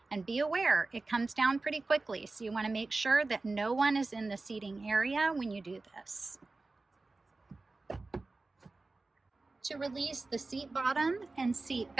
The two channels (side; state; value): left; quieter; 3.5 dB